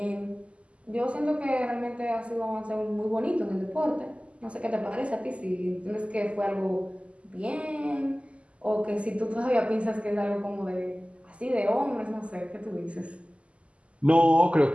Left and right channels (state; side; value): late; left; 0.059 ms